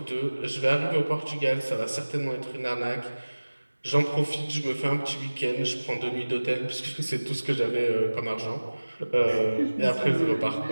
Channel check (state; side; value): inverted; both; correlation -1.00